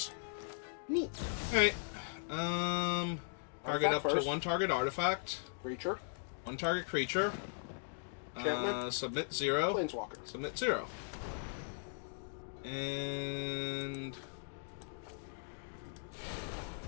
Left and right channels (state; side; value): silent; right; digital silence